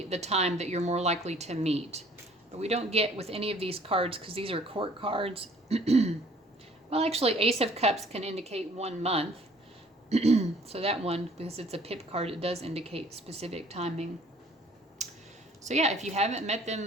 the time that you're more likely to meet. But we don't get with any of these cards because these are court cards. Well, actually, Ace of Cups can indicate 1 month. So that one, because it's a pip card, it does indicate specific timing. So yeah, if you haven't met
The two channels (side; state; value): both; normal; correlation 0.56